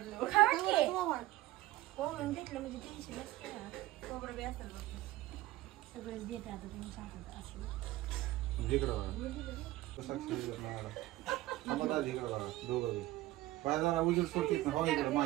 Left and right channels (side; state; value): left; quieter; 17.1 dB